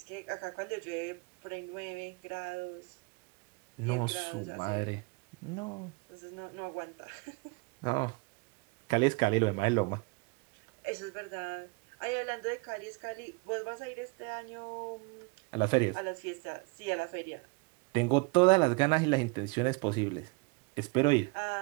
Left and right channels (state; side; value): quieter; left; 28.7 dB